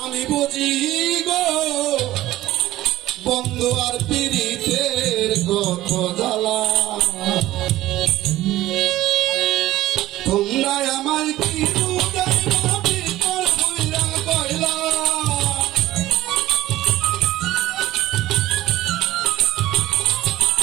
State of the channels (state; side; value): quieter; left; 15.7 dB